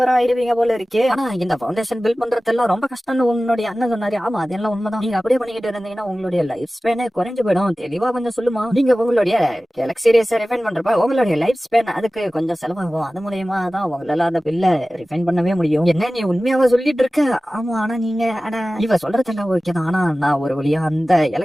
ஆயிருவீங்க போல இருக்கு. ஆனா இந்த ஃபவுண்டேஷன் பில்ட் பண்றதெல்லாம் ரொம்ப கஷ்டம்னு உன்னுடைய அண்ணன் சொன்னாரு. ஆமா அதெல்லாம் உண்மைதான். நீங்க அப்படியே பண்ணிக்கிட்டு இருந்தீங்கன்னா உங்களுடைய லைஃப் ஸ்பேனே குறைஞ்சு போயிடும். தெளிவா கொஞ்சம் சொல்லுமா, நீங்க உங்களுடைய கேலக்ஸி ரேஸை ரிஃபைன் பண்றப்ப உங்களுடைய லைஃப் ஸ்பேன் அதுக்கு கொஞ்சம் செலவாகும். அது மூலியமா தான் உங்களால அந்த பில்ல ரிஃபைன் பண்ணவே முடியும். என்ன நீ உண்மையாவா சொல்லிட்டு இருக்க, ஆமா ஆனா நீங்க இவ சொல்றதெல்லாம் ஓகே தான், ஆனா நான் ஒரு வழியா அந்த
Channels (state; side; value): normal; both; correlation 0.97